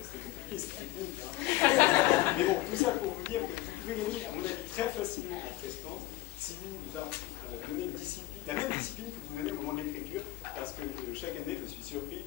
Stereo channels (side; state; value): right; quieter; 17.0 dB